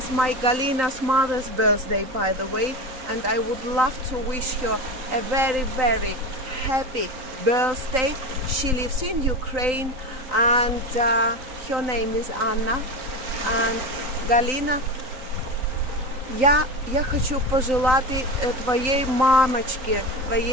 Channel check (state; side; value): late; left; 3.9 ms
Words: my Galina's mother's birthday, by the way, and I would love to wish her a very, very happy birthday. She lives in Ukraine, and her name is Anna. And Галина, я хочу пожелать твоей мамочке,